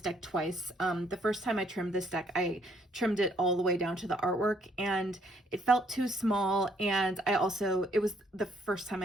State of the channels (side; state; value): both; normal; correlation 0.67